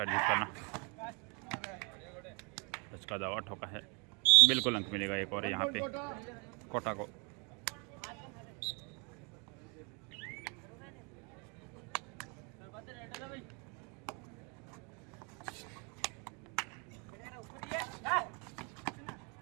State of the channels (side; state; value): left; quieter; 33.5 dB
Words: करना। उसका दावा ठोका है। बिल्कुल अंक मिलेगा एक और यहाँ पे कोटा को।